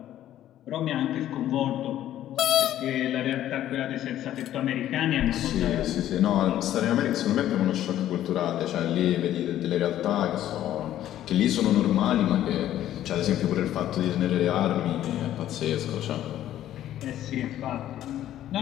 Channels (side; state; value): right; quieter; 12.4 dB